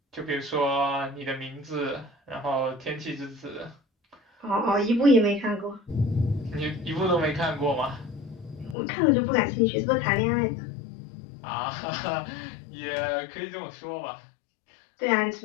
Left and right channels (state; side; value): drops out; right; at 8.8 s